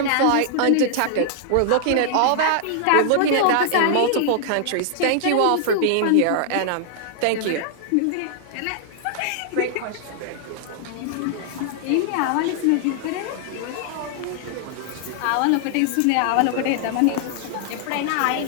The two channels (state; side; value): different; both; correlation -0.01